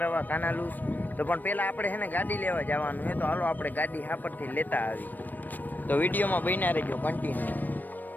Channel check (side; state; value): right; late; 0.088 ms